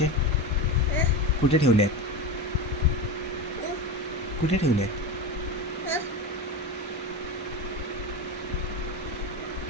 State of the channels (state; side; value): normal; both; correlation 0.21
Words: कुठे ठेवले आहेत? कुठे ठेवले आहेत?